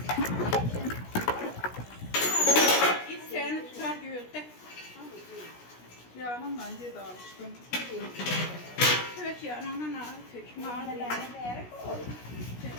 Seni tutar göğütte. Yanımla yedi alıştım. Kök yanına kök mağaralarına değer koy.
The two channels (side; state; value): right; late; 16 ms